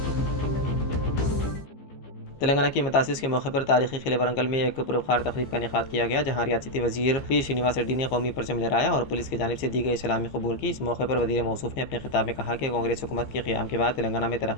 तेलंगाना की मतासिस के मौके पर तारीखी किले वरंगल में एक पुरवखार तकरीब का इनेकाद किया गया, जहां रियासती वजीर पी श्रीनिवास रेड्डी ने कौमी परचम लहराया और पुलिस की जानिब से दी गई सलामी कबूल की। इस मौके पर वजीर मौसूफ ने अपने खिताब में कहा कि कांग्रेस हुकूमत के क़याम के बाद तेलंगाना में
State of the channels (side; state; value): right; late; 15 ms